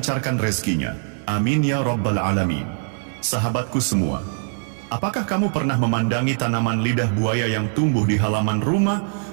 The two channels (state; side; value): silent; left; 64 dB below the other